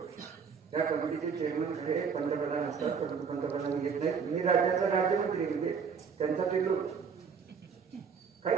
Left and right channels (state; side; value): quieter; left; 6.2 dB